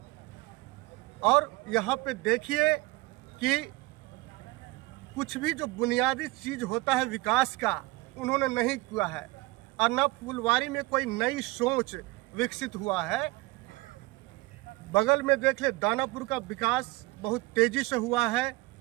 और यहाँ पे देखिए कि कुछ भी जो बुनियादी चीज़ होता है विकास का, उन्होंने नहीं किया है। और न फुलवारी में कोई नई सोच विकसित हुआ है। बगल में देख ले, दानापुर का विकास बहुत तेज़ी से हुआ है।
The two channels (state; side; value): quieter; left; 21.7 dB